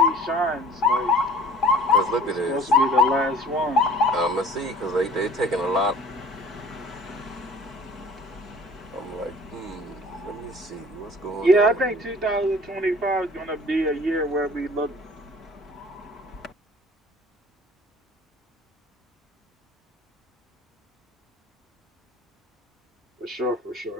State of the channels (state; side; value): normal; both; correlation 0.48